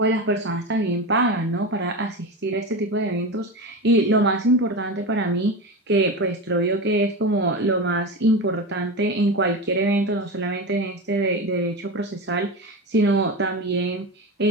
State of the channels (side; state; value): both; normal; correlation 0.22